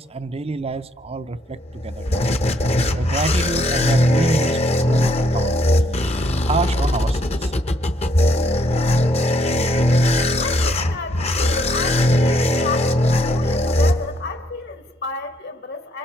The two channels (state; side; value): normal; both; correlation 0.71